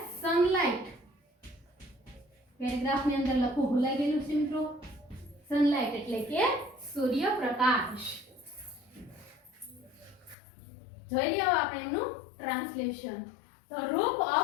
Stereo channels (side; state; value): right; drops out; at 10.4 s